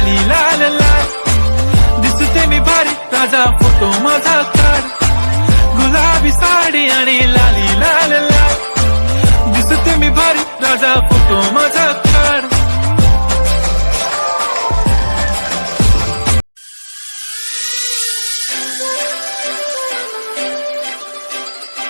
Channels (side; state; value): both; inverted; correlation -1.00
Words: लाल लाल, दिसते मी भारी ताजा फोटो माझा काढ. गुलाबी साडी आणि लाली लाल लाल, दिसते मी भारी ताजा फोटो माझा काढ.